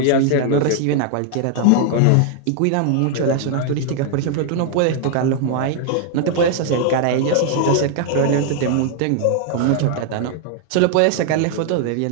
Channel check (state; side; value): different; both; correlation 0.00